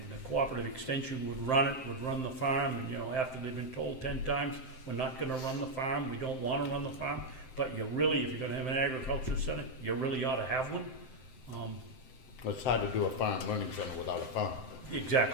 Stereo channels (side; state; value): right; late; 7.7 ms